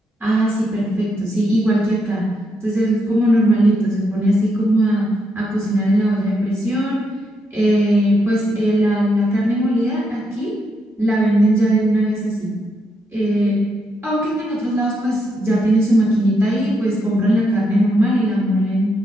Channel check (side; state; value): both; normal; correlation 0.79